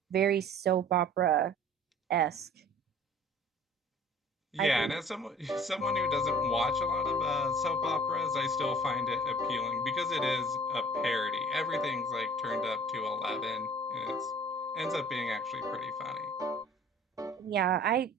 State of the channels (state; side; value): normal; both; correlation 0.48